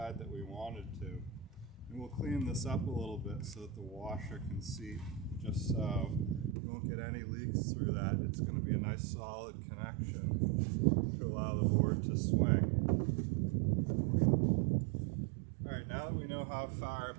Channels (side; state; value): left; drops out; at 6.6 s